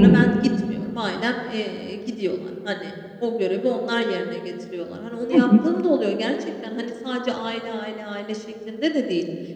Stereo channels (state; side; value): identical; both; correlation 1.00